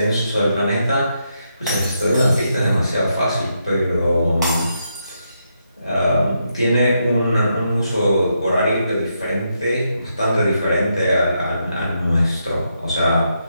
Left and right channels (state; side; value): inverted; both; correlation -0.81